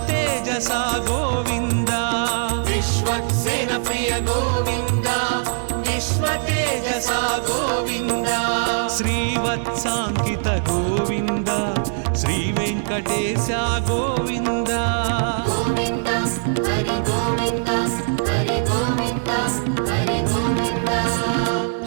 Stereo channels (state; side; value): silent; left; digital silence